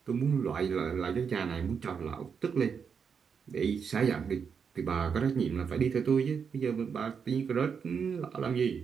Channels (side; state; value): left; quieter; 6.4 dB